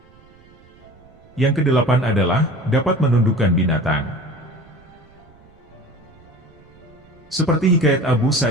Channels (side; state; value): right; noise; rumble, 27 dB below the sound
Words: Yang kedelapan adalah, dapat menundukkan binatang. Seperti hikayat Abu